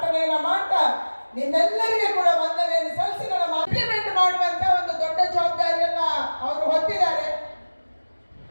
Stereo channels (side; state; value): both; inverted; correlation -1.00